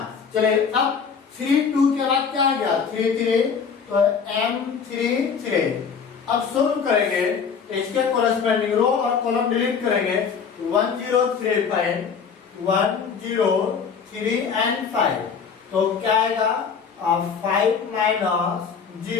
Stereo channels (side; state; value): right; quieter; 6.2 dB